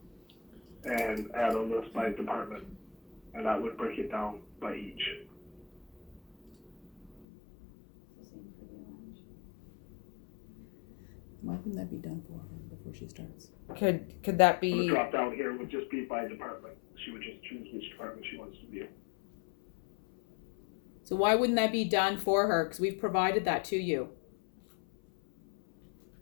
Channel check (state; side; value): drops out; right; at 7.2 s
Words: and add a list by department, and that would break it down by each. Why wouldn't that be done for her before she starts? Could that The be? drop down here would just be by department. She would just choose which department she wants to view. So why wouldn't that be done for her? Because we've provided that to you.